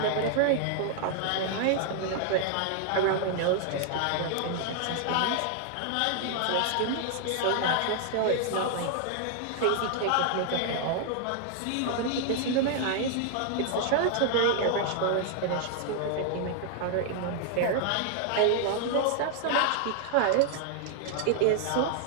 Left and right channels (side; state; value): both; different; correlation 0.00